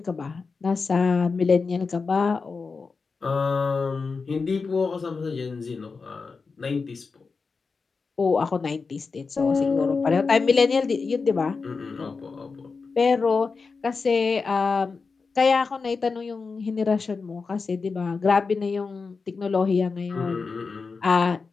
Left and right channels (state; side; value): quieter; right; 4.7 dB